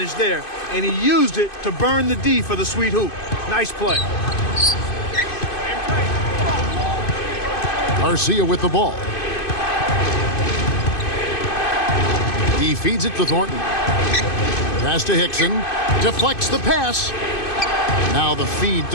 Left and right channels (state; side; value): late; right; 2.5 ms